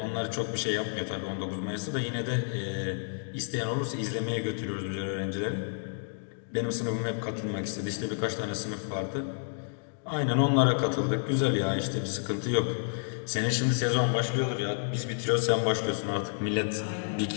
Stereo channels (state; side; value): silent; right; digital silence